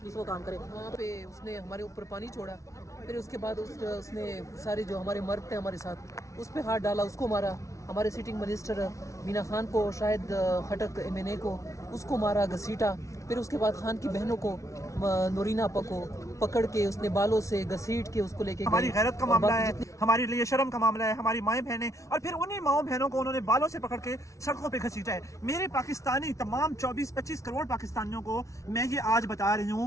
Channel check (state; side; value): late; right; 0.15 ms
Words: वो काम करे। वहाँ पे उसने हमारे ऊपर पानी छोड़ा, फिर उसके बाद उसने सारे जो हमारे मर्द थे हमारे साथ, उस पर हाथ डाला, उसको मारा। हमारे सिटिंग मिनिस्टर मीना खान को, शायद खटक MNA को, उसको मारा, घसीटा। फिर उसके बाद खान की बहनों को, नोरीना आपा को पकड़ के उसने बालों से घसीट के उसको लेके हमारी गैरत का मामला है, हमारे लिए शर्म का मामला है, हमारी माएँ बहनें, और फिर उन्हीं माओ बहनों को उन्होंने बालों से पकड़ के सड़कों पे घसीटा है। मेरे पाकिस्तानी तमाम 24-25 करोड़ पाकिस्तानियों को मैं ये आज बता रही